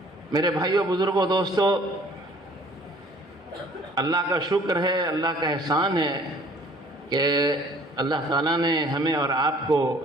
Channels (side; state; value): both; normal; correlation 0.54